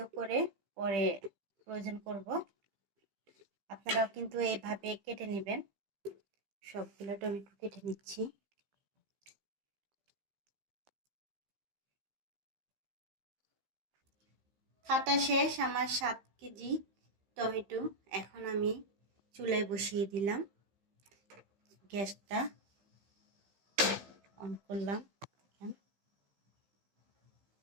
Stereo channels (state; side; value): late; left; 15 ms